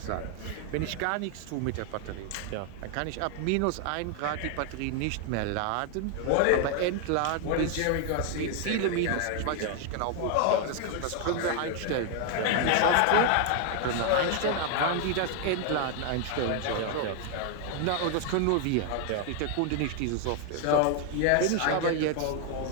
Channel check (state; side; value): different; both; correlation 0.00